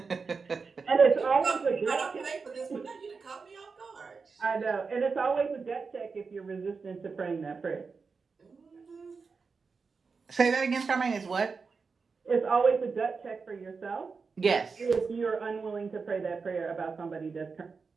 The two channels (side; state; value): left; quieter; 4.9 dB